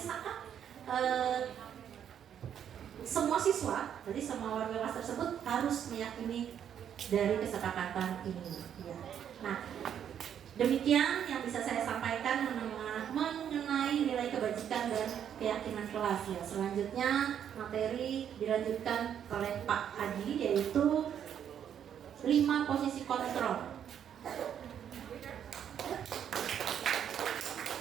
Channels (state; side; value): quieter; left; 9.1 dB